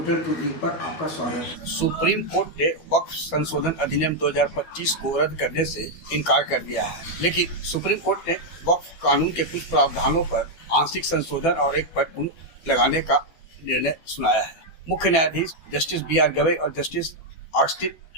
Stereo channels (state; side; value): late; right; 12 ms